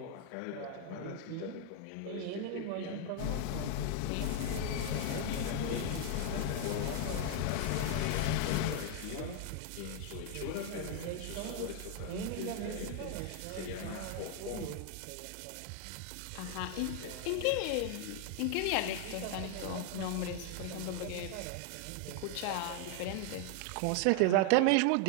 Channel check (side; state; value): both; different; correlation 0.00